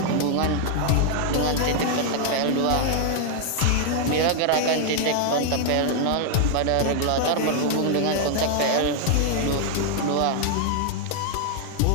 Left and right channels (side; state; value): both; different; correlation 0.00